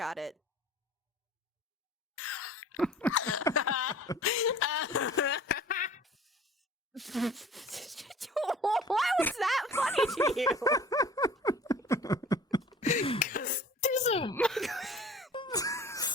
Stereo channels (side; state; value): both; normal; correlation 0.46